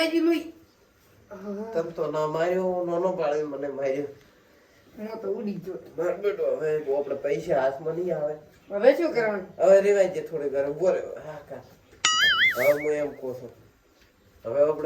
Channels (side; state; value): both; identical; correlation 1.00